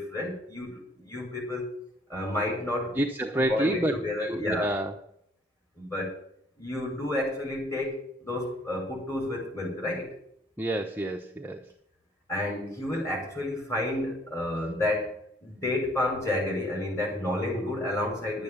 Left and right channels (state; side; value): normal; both; correlation 0.61